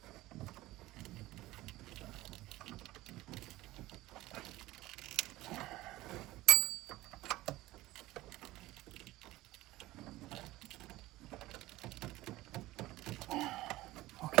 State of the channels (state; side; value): quieter; left; 17.7 dB